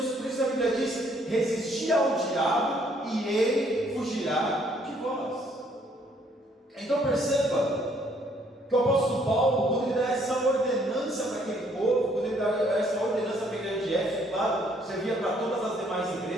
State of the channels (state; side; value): normal; both; correlation 0.65